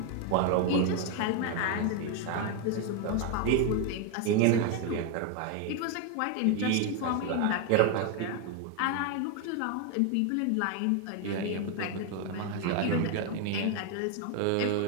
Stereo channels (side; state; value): both; different; correlation 0.01